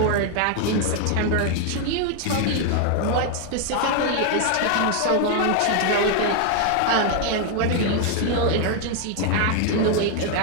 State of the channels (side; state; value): both; different; correlation 0.00